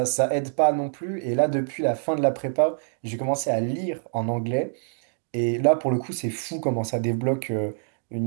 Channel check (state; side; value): silent; left; digital silence